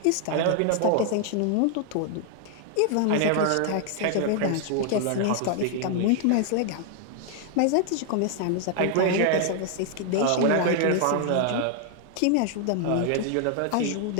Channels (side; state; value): both; different; correlation 0.00